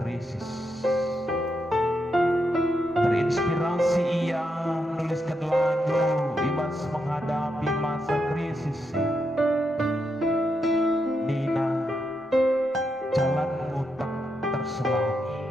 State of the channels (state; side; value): normal; both; correlation 0.82